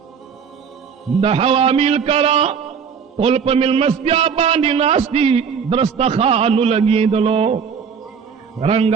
دا حوامیل کرا قلپ مل مستیا باندی ناستی درستخانو لگی دلو،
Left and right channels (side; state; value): left; quieter; 6.6 dB